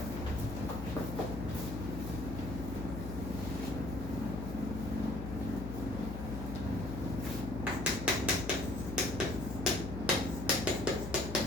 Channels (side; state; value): left; noise; hum, 6 dB below the sound